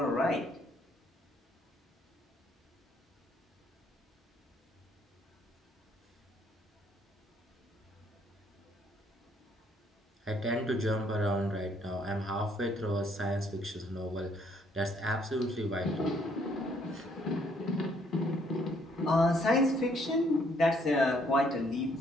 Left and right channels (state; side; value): normal; both; correlation 0.67